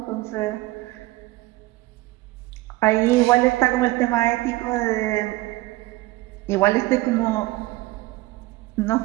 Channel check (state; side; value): quieter; left; 19.3 dB